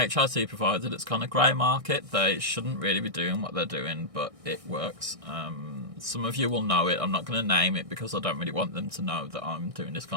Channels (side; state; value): left; late; 1.6 ms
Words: provider that's kind of grey market. They shouldn't really be doing what they're doing, but it works. Some of you will know it. I'm not going to name it because I don't really want them to know that I'm doing this